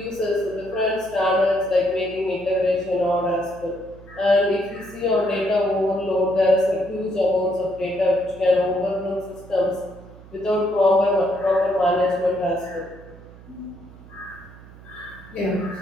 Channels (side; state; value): right; noise; hum, 20 dB below the sound